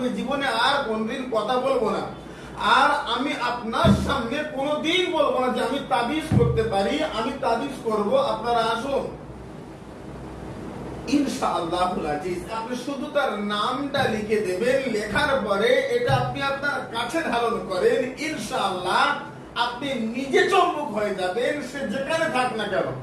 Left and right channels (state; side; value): identical; both; correlation 1.00